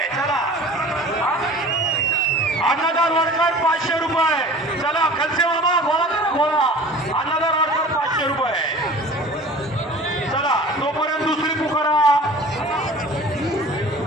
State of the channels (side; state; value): both; normal; correlation 0.42